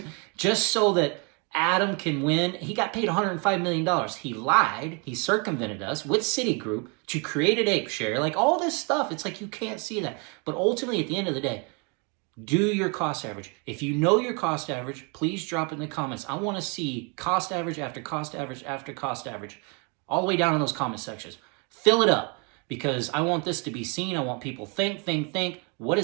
just so that Adam can win. He got paid $105 million. He lied. He circumvented us with Citigroup to create an ape share. Like all this stuff, it's like you can't see that. But ultimately, at the end of the day, do your cost average. If you know your cost average, please drop it in the comments. I want to see cost average after cost average after cost average, all the way down in those comment sections. Fill it up, because I want this to be seen. I want people think. What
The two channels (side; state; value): left; quieter; 33.2 dB